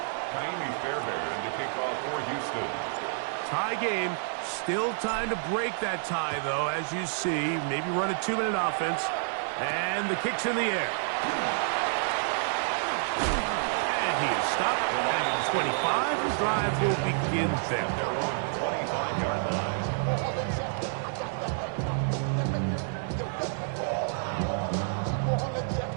Fairbairn to kick off for Houston. Tie game. Still time to break that tie, though, as you see. Maybe run a 2-minute offense. And the kick's in the air. And he is stopped at 25. The drive will begin there. They're on 25-yard line.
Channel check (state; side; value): silent; left; digital silence